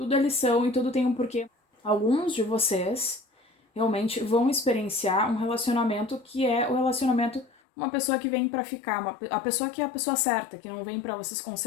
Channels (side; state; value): right; drops out; at 7.5 s